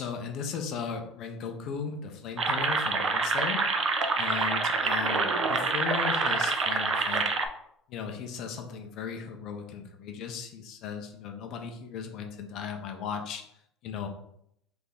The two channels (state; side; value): normal; both; correlation 0.45